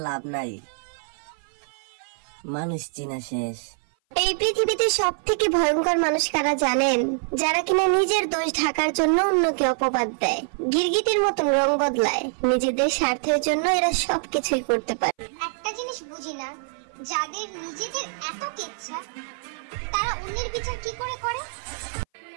লাভ নাই, মানুষ চিনা শেষ। এই পৃথিবীতে সব থেকে ভয়ঙ্কর মানুষ কারা জানেন? যারা কিনা নিজের দোষ ঢাকার জন্য অন্যকে অপবাদ দেয়, গিরগিটির মতন রং বদলায়। নিজেদের স্বার্থের জন্য এরা সবকিছুই করতে পারে। একটা জিনিস বুঝি না, যাদের নিজেদের এত ইচ্ছা তারা অন্যের বিচার কি করে করে?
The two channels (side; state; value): left; silent; 57 dB below the other